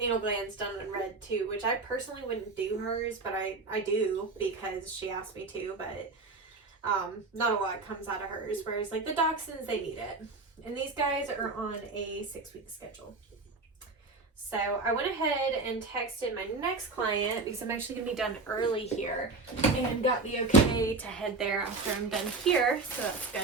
glands done on Red too, which I personally wouldn't do hers, but I do because she asked me to, but not a lot comes out of hers, whereas like the dachshunds, they need it. And these guys are on a 6-week schedule. So I went ahead and texted my next client because I'm actually going to be done early here, and got the okay to head there after I'm done here. So that's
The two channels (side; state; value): left; quieter; 3.7 dB